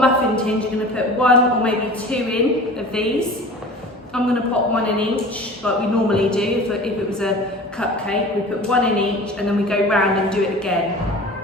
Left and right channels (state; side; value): normal; both; correlation 0.40